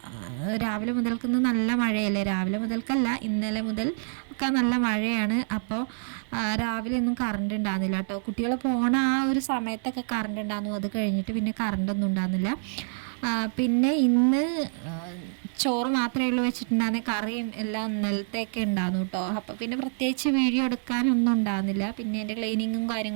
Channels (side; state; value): left; silent; digital silence